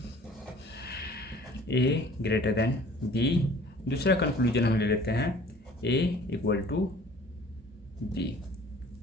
ए ग्रेटर देन बी। दूसरा कंक्लूजन हम ले लेते हैं A equal to B.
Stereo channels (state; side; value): normal; both; correlation 0.51